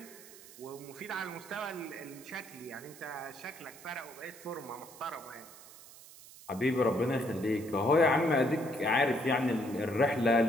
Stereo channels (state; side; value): noise; right; hiss, 19 dB below the sound